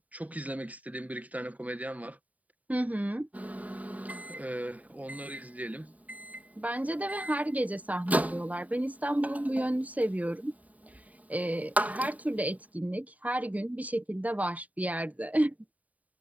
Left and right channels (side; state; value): left; late; 0.072 ms